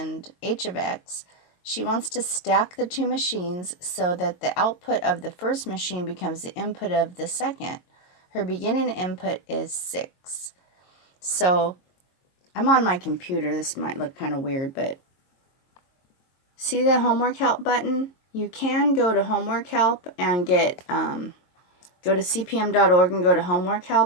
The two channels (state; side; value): late; right; 22 ms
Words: h of x. She wants to stack the two machines so that the output of the first machine becomes the input of the second. Her beginning input is 6. So I'm on my computer. This might look kind of weird, but see the homework help button? You can go to homework help and get go to cpm.org and go to homework